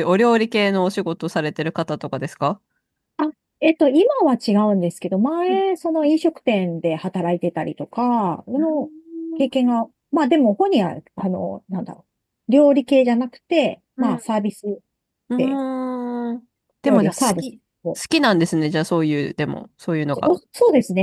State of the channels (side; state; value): both; identical; correlation 1.00